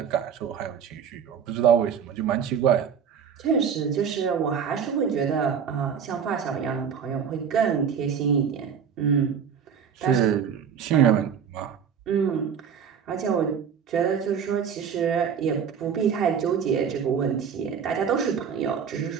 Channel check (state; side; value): quieter; left; 7.4 dB